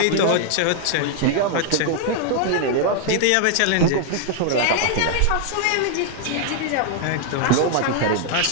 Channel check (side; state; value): both; different; correlation 0.00